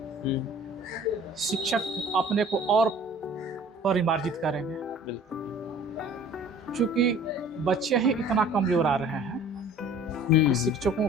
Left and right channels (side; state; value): both; normal; correlation 0.48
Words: शिक्षक अपने को और परिमार्जित करेंगे। क्योंकि बच्चे ही इतना कमजोर आ रहे हैं कि शिक्षकों